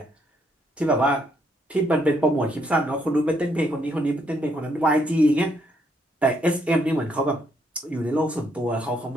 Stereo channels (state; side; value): normal; both; correlation 0.73